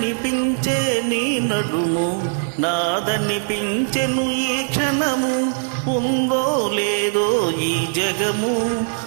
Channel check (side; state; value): left; silent; digital silence